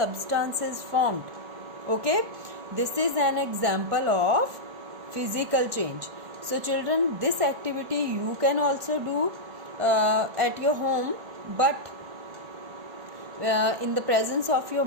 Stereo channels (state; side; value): late; left; 1.5 ms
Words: is formed. Okay, this is an example of physical change. So children, this activity you can also do. at your home, but in the presence of your